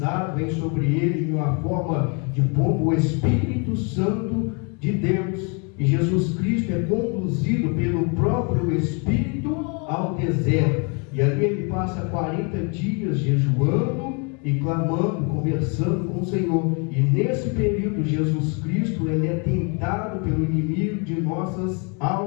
vem sobre ele em uma forma de pombo o Espírito Santo de Deus. E Jesus Cristo é conduzido pelo próprio Espírito ao deserto. E ali ele passa 40 dias jejuando e clamando, conversando com o Senhor. E nesse período, Jesus Cristo, ele é tentado pelo inimigo de nossas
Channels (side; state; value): right; quieter; 35.1 dB